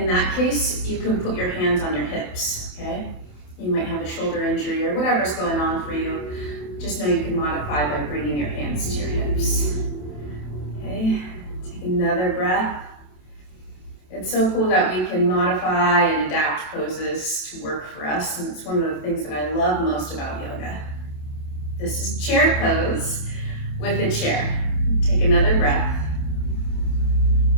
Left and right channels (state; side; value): late; right; 27 ms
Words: that case, you can put your hands on your hips, okay? You might have a shoulder injury or whatever's going on for you. Just know you can modify by bringing your hands to your hips. Okay, take another breath. It's so cool that we can modify and adapt poses to work for us, and it's one of the things that I love most about yoga. This is chair pose with a chair. Take another breath.